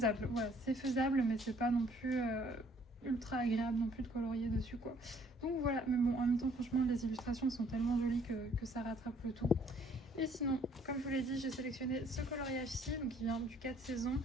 voilà, c'est faisable, mais c'est pas non plus... ultra agréable non plus de colorier dessus quoi. Donc voilà, mais bon en même temps franchement les illustrations sont tellement jolies que ça rattrape le tout. Et sinon, comme je vous l'ai dit, j'ai sélectionné ce coloriage-ci, donc qui vient du 4 saisons.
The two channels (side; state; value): both; normal; correlation 0.61